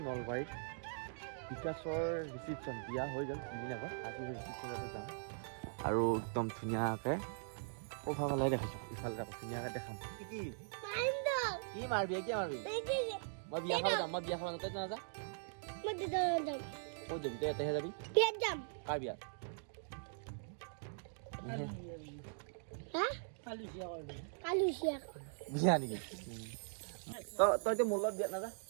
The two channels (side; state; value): left; silent; digital silence